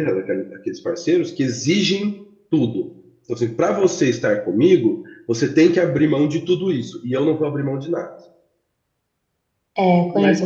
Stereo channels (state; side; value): identical; both; correlation 1.00